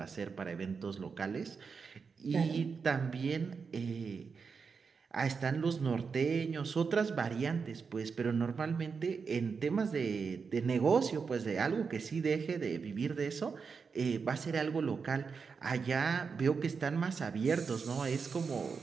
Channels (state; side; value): quieter; left; 5.4 dB